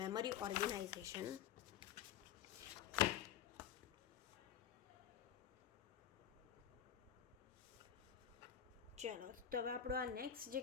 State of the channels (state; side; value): quieter; right; 9.3 dB